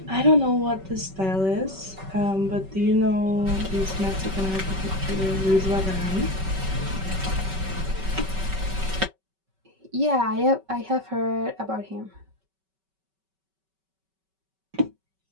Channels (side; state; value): left; late; 5.2 ms